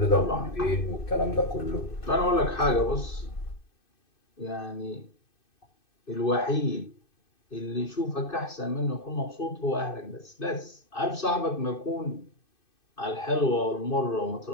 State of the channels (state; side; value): late; right; 2.6 ms